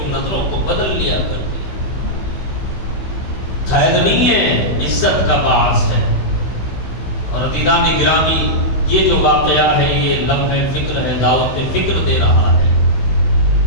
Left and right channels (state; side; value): late; right; 16 ms